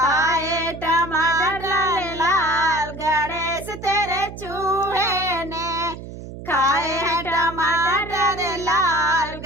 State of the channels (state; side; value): noise; right; hum, 12 dB below the sound